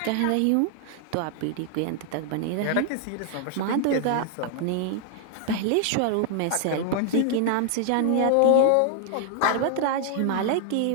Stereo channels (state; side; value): different; both; correlation -0.01